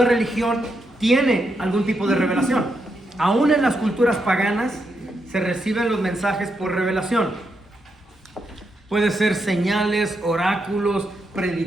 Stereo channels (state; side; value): normal; both; correlation 0.82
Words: religión tiene algún tipo de revelación. Aún en las culturas paganas se reciben los mensajes por revelación. Puede ser señales, oráculos,